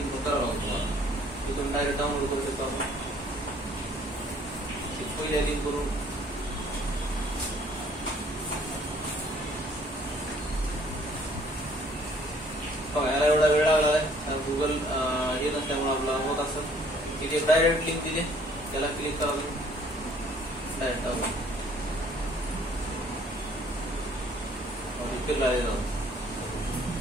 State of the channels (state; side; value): normal; both; correlation 0.59